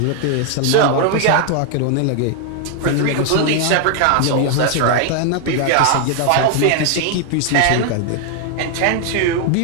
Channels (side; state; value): both; different; correlation 0.00